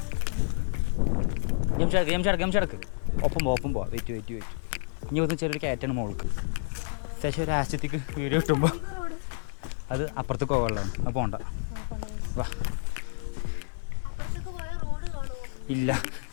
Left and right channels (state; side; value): silent; right; digital silence